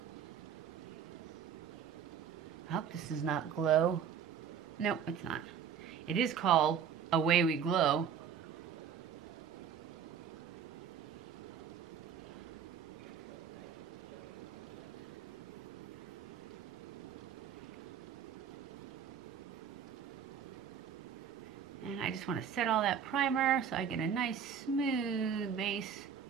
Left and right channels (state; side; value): quieter; left; 7.7 dB